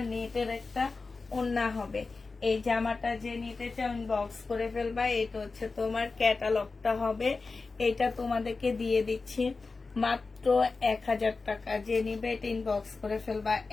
নেটের একটা ওড়না হবে। এই জামাটা যে নিতে চাও ইনবক্স করে ফেলবা। এটা হচ্ছে তোমার ক্যাটালগটা হবে। এটা তোমাদেরকে দিয়ে দিচ্ছি মাত্র 1000 টাকা। যে নিবে এটা ইনবক্স করে ফেলবা।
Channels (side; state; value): right; quieter; 4.0 dB